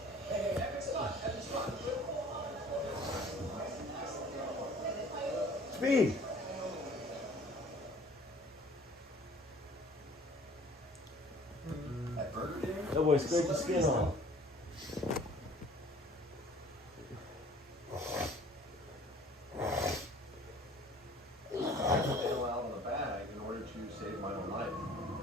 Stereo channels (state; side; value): normal; both; correlation 0.51